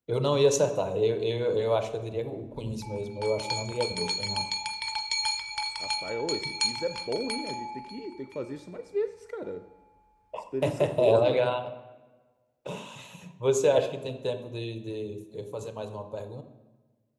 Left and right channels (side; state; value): both; identical; correlation 1.00